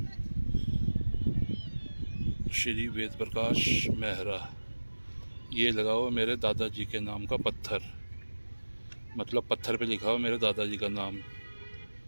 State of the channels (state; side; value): inverted; both; correlation -1.00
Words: श्री वेद प्रकाश मेहरा, ये लगा हुआ मेरे दादाजी के नाम का पत्थर, मतलब पत्थर पे लिखा हुआ मेरे दादाजी का नाम।